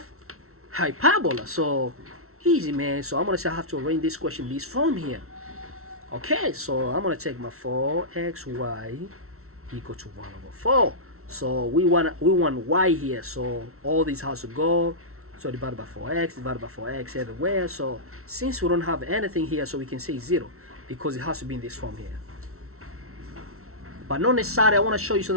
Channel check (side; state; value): left; late; 0.63 ms